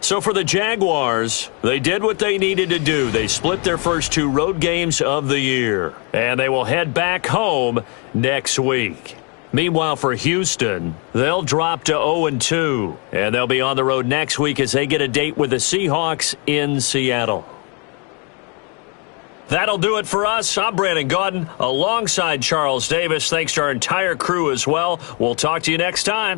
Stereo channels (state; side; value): quieter; right; 34.9 dB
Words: for the Jaguars, they did what they needed to do. They split their first 2 road games of the year, and they will head back home next week. Meanwhile, for Houston, they'll drop to 0-2, and they'll be on the road next week as they get a date with the Seahawks in Seattle. That'll do it for us. I'm Brandon Gaudin alongside Charles Davis. Thanks to our entire crew as well. We'll talk to you next